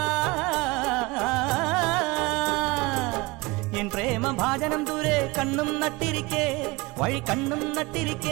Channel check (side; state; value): left; quieter; 23.6 dB